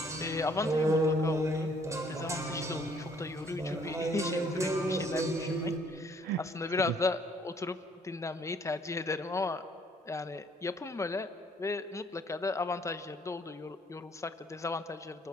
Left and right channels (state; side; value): normal; both; correlation 0.62